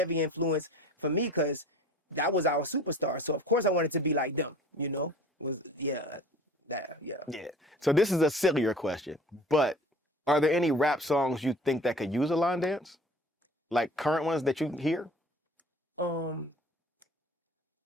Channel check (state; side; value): normal; both; correlation 0.45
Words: influence for me because that was our superstar. So of course I wanted to be like them, Yeah. So this is a sillier question, but are there any rap songs you think that could use a line dance? Like current ones that you hear?